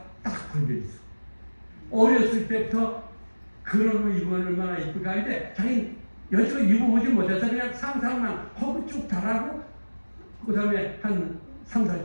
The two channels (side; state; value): both; inverted; correlation -1.00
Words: 딱 걸려있어. 어렸을 때부터 그런 거 입으면 얼마나 이쁠까 하는데 자기는 여지껏 입어보지 못해서 그냥 상상만 하고 쭉 달하고 그 다음에 한 3,